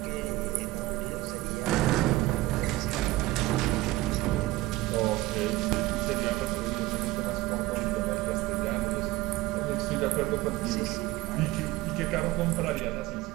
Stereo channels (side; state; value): left; quieter; 18.5 dB